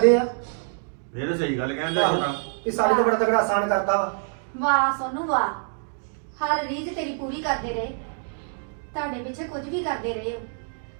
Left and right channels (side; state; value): left; silent; 61 dB below the other